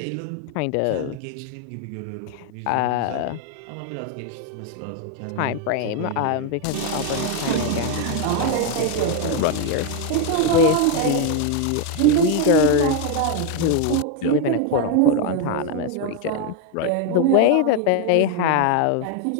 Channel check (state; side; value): different; both; correlation 0.01